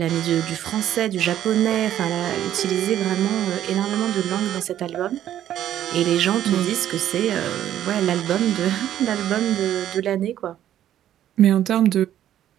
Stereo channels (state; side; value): quieter; left; 11.5 dB